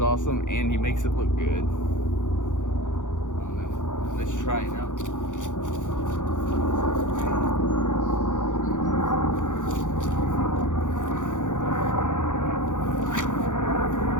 awesome, and he makes it look good. I don't know. Let's try it out.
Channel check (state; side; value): late; right; 0.86 ms